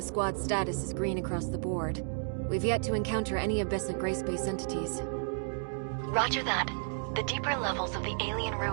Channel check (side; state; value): left; silent; digital silence